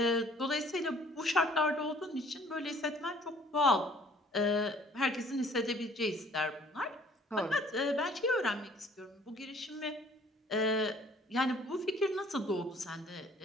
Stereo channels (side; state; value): both; normal; correlation 0.56